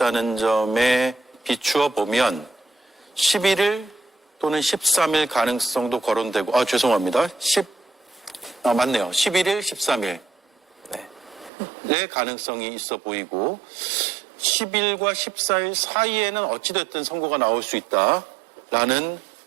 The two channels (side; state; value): left; drops out; at 11.5 s